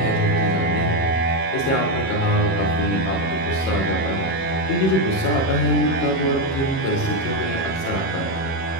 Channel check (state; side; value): late; right; 37 ms